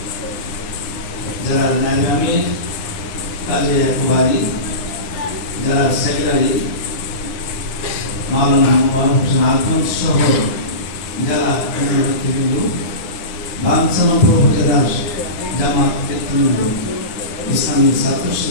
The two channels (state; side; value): late; right; 9.8 ms